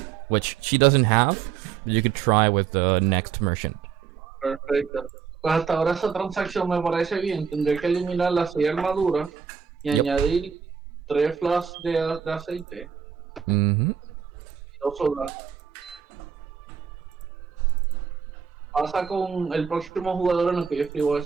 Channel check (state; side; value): quieter; left; 7.2 dB